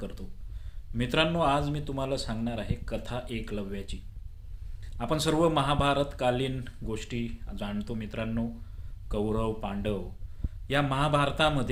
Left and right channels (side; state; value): both; identical; correlation 1.00